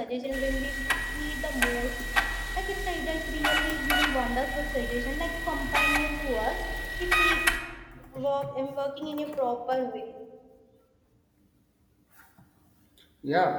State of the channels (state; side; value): identical; both; correlation 1.00